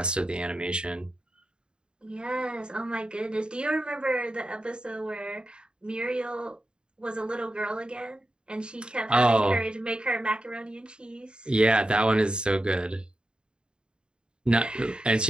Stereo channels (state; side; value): late; left; 0.051 ms